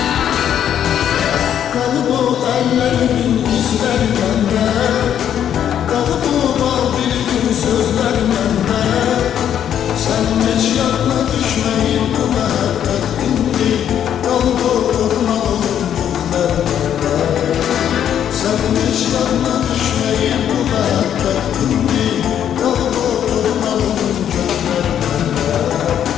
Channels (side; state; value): right; quieter; 9.7 dB